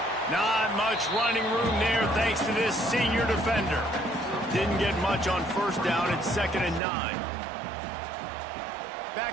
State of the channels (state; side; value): drops out; left; at 6.8 s